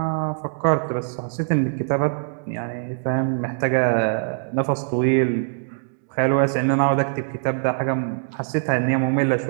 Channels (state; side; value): silent; left; digital silence